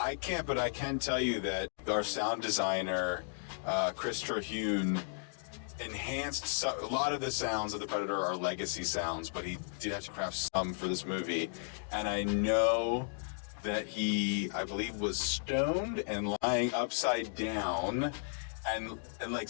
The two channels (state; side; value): silent; right; digital silence